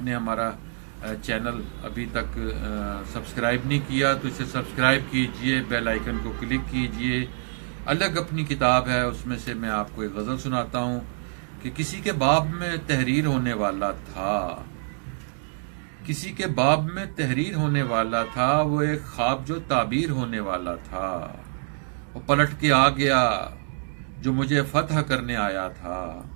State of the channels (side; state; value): left; silent; 61 dB below the other